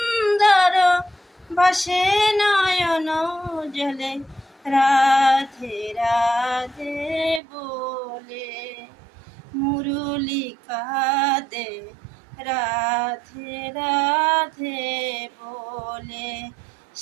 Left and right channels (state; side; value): drops out; left; at 7.4 s